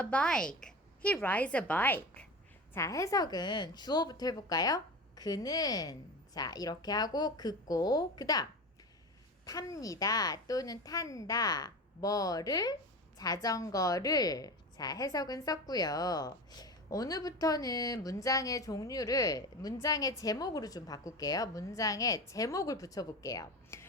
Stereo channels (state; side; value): normal; both; correlation 0.28